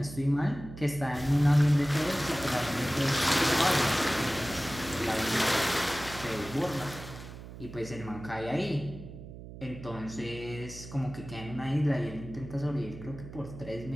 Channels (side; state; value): right; noise; hum, 13 dB below the sound